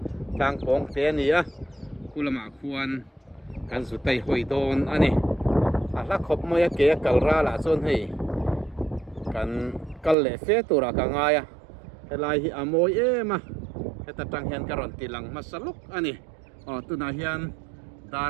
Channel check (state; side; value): drops out; left; at 10.2 s